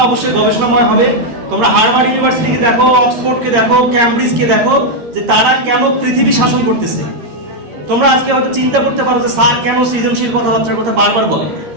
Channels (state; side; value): late; left; 13 ms